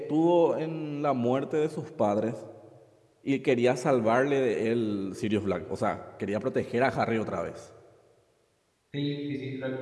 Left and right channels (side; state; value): both; identical; correlation 1.00